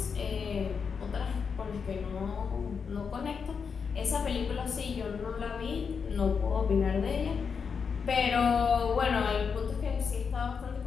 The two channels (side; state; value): right; quieter; 6.0 dB